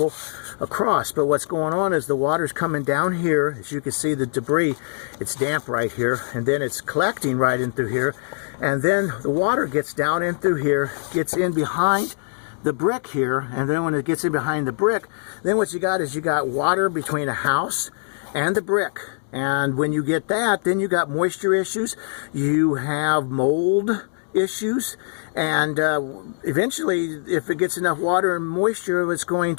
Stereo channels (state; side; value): silent; right; digital silence